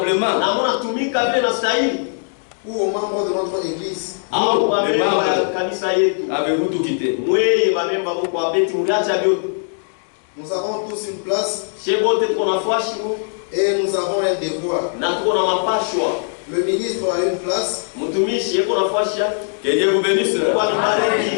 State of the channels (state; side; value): silent; right; digital silence